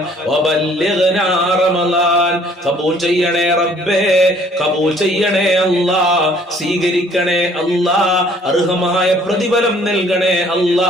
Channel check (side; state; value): both; normal; correlation 0.58